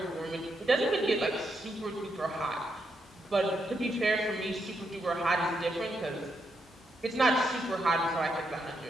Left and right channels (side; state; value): both; normal; correlation 0.80